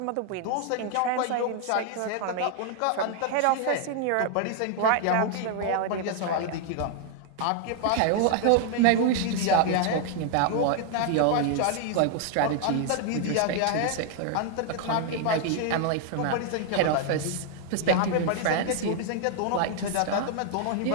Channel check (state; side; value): different; both; correlation 0.00